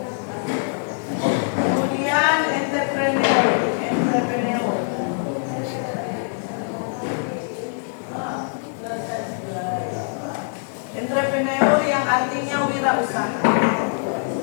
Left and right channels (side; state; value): right; silent; 60 dB below the other